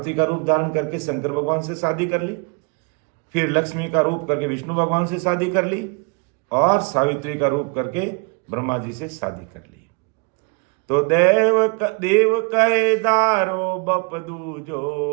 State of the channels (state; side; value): quieter; left; 33.9 dB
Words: का रूप धारण करके शंकर भगवान से शादी कर ली, फिर लक्ष्मी का रूप करके विष्णु भगवान से शादी कर ली, और सावित्री का रूप करके ब्रह्मा जी से शादी कर ली। तो देव कहे दारो बप